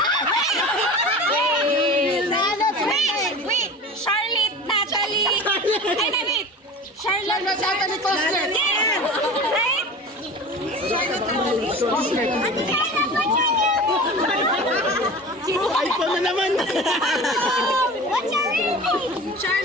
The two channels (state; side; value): normal; both; correlation 0.35